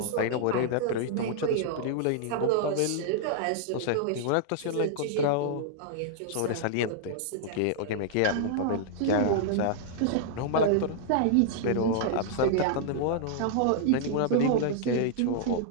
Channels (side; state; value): both; different; correlation -0.01